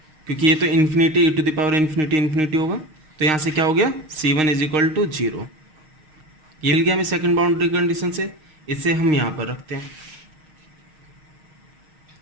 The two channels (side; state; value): left; late; 6.4 ms